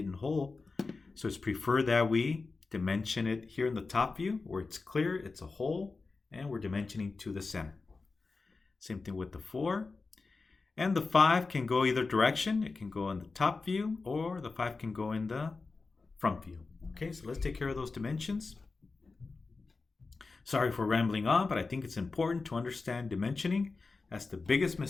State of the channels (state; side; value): quieter; right; 4.0 dB